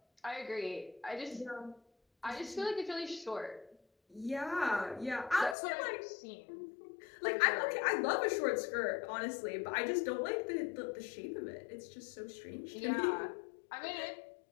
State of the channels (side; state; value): right; drops out; at 5.6 s